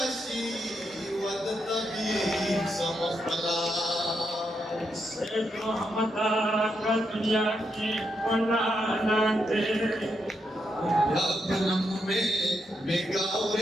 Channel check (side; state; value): both; normal; correlation 0.82